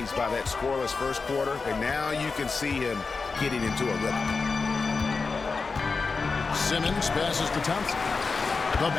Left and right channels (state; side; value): quieter; right; 4.5 dB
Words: by that scoreless first quarter, and now you can see him getting into a rhythm. Simmons passes to Thompson. The